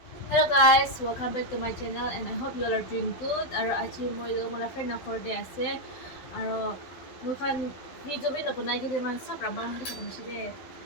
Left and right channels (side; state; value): right; late; 12 ms